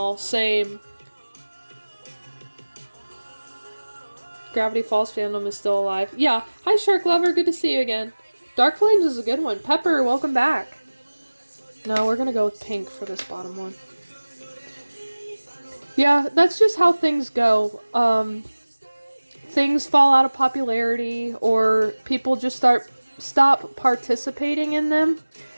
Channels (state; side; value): inverted; both; correlation -1.00